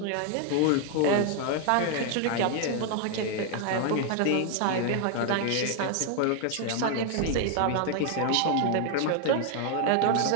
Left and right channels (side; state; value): both; different; correlation 0.00